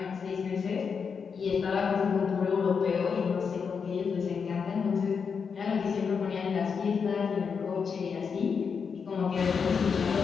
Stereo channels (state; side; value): quieter; right; 6.0 dB